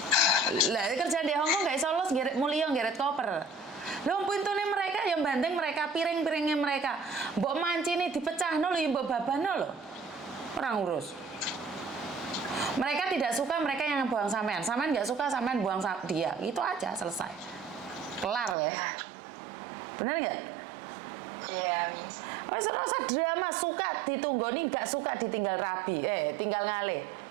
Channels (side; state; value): left; drops out; at 18.6 s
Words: Lah kerja di Hongkong gak iso los mulia geret koper. Lho pintune mereka yang banting mereka, piring-piringnya mereka. Mbok mancine dipecahno lho, mbok babano lho. Orang urus. Mereka tidak suka mereka yang buang sampean. Sampean nggak suka sampean buang dia. Itu aja selesai. Kelar ya. Bener nggak? Iya, Miss. Wes ora usah drama, suka ditunggoni, nggak suka ditinggal rabi. Tinggal ngalih.